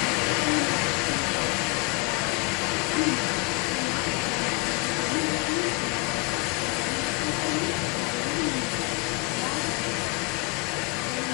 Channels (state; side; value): quieter; right; 27.3 dB